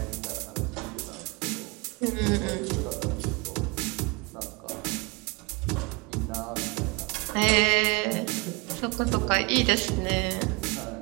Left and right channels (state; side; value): quieter; left; 28.0 dB